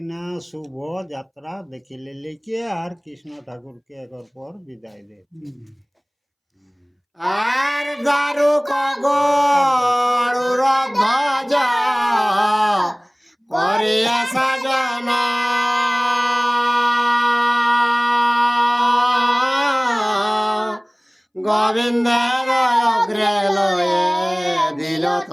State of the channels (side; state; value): both; identical; correlation 1.00